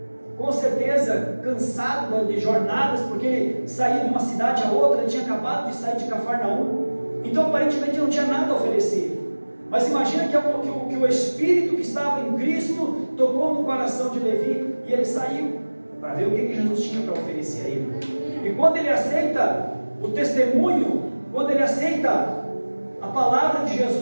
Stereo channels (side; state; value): both; inverted; correlation -1.00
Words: com certeza cansado de jornadas, porque ele saía de uma cidade a outra, ele tinha acabado de sair de Cafarnaum. Então aparentemente não tinha nada a oferecer, Mas imagina que o Espírito que estava em Cristo tocou no coração de Levi e ele saiu para ver o que Jesus tinha para oferecer a ele. E quando ele aceita o testemunho, quando ele aceita a palavra de